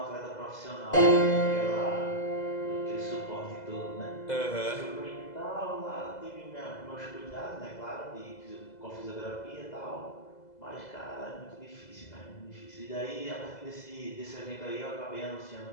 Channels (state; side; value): late; right; 2.0 ms